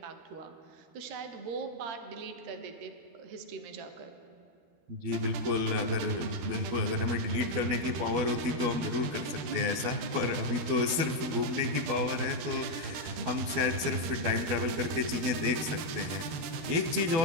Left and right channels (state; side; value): late; left; 12 ms